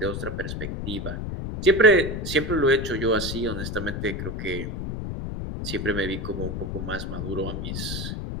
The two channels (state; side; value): noise; left; rumble, 4 dB below the sound